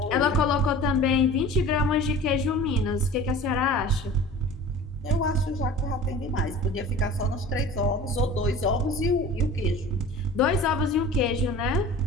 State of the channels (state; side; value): normal; both; correlation 0.40